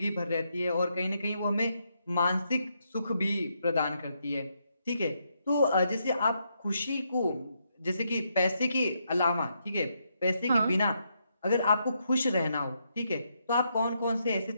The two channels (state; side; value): inverted; both; correlation -0.79